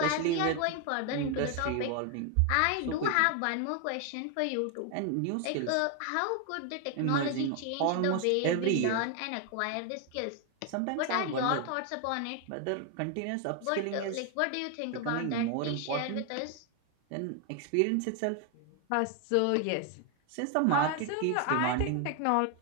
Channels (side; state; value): both; different; correlation 0.01